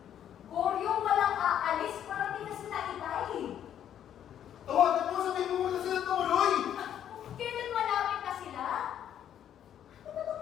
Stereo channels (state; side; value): quieter; right; 10.0 dB